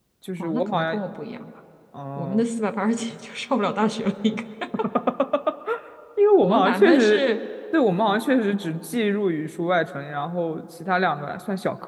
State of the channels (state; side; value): identical; both; correlation 1.00